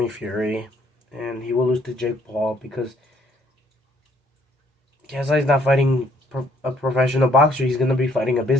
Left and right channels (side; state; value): both; normal; correlation 0.65